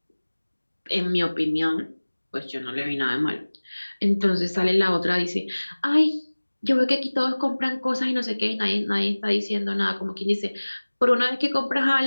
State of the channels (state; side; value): inverted; both; correlation -1.00